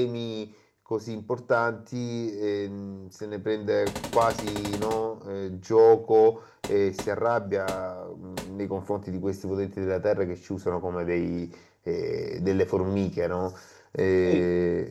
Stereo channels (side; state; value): both; identical; correlation 1.00